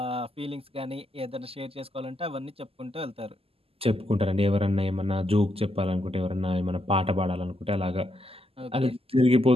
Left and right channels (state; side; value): late; left; 0.28 ms